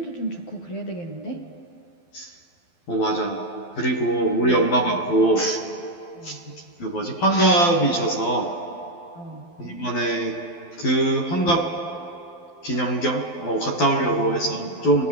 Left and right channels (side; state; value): right; late; 12 ms